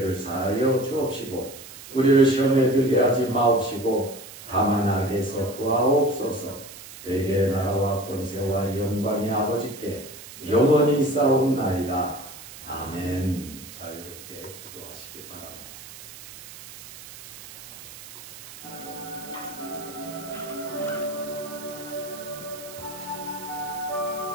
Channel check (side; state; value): right; noise; hiss, 15 dB below the sound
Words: 사하여 주옵시고 우리를 시험에 들게 하지 마옵시고 다만 악에서 구하옵소서. 대개 나라와 권세와 영광이 아버지께 영원히 있사옵나이다. 아멘. 자유롭게 기도하시기 바랍니다.